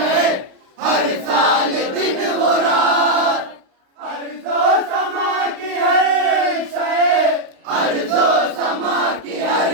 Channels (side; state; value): left; late; 32 ms